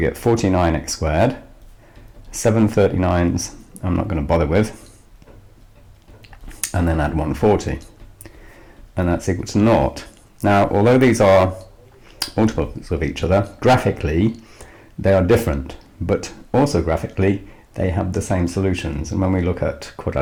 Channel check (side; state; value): both; identical; correlation 1.00